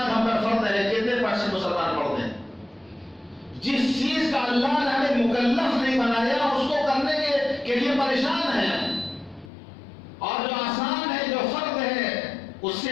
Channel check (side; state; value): right; drops out; at 9.5 s